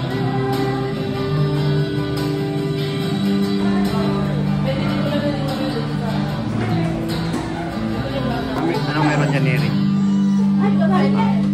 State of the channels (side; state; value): both; identical; correlation 1.00